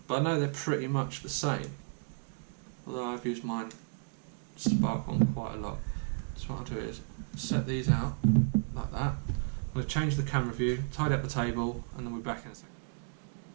But I know they're pretty much the same. Although I've used mine Spark one quite a lot. So what I'll do is set these out like that. I'm going to change the camera view, tidy up the table, and then we're back in a second.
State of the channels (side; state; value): left; silent; 56 dB below the other